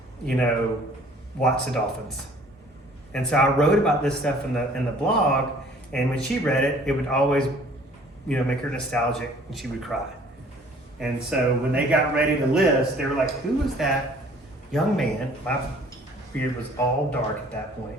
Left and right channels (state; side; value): normal; both; correlation 0.54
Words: you know, watch the dolphins. And so I wrote about this stuff in the blog, and when she read it, it would always, you know, make her nostalgic, and she would cry. And so when they got ready to list, they were like, who was that young man? My beard was all dark at that point.